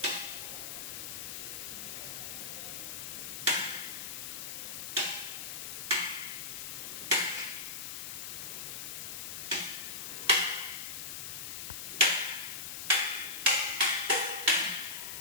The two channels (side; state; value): left; noise; hiss, 6 dB below the sound